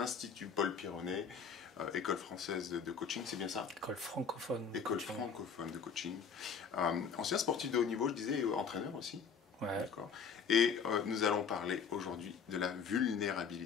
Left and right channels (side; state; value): right; quieter; 6.1 dB